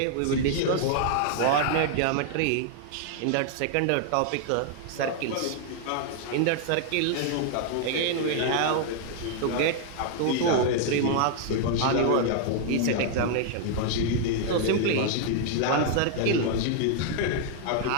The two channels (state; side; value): different; both; correlation 0.00